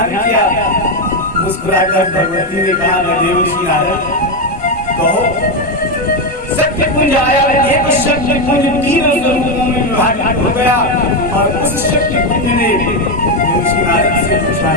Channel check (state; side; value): normal; both; correlation 0.08